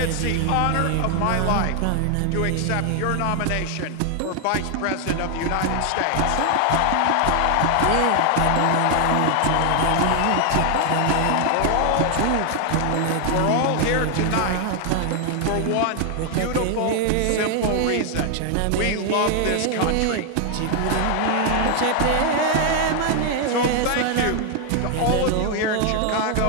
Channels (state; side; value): different; both; correlation 0.00